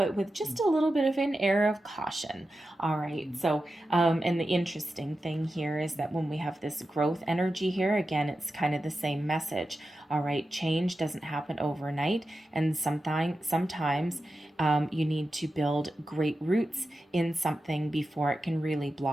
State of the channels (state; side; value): normal; both; correlation 0.91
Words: with just a little bit of an air of caution. All right. So, and the interesting thing here is that when we have this growth energy here, again, it's kind of the same message. All right. Change doesn't happen overnight. And sometimes you need to build great roots in something before it can really